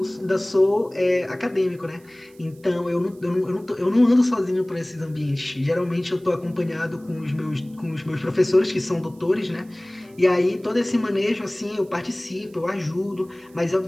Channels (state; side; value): noise; right; hiss, 29 dB below the sound